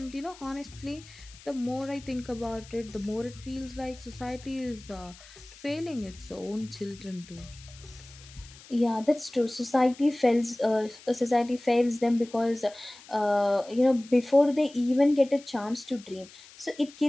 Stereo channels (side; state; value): left; noise; hiss, 21 dB below the sound